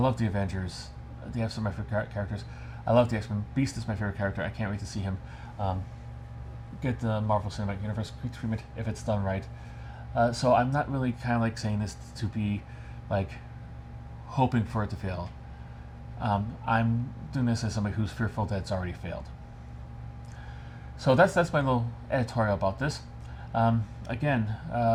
the Avengers. They have some of my favorite characters. I love the X-Men. Beast is my favorite character. I can't wait to see him get the Marvel Cinematic Universe treatment if it's done right. So I'm not really kind of like saying this to be like hoping for it to fail. I'm doing this as somebody who's fearful that it's already failed. So that's my little editorial about this. Again,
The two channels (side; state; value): both; identical; correlation 1.00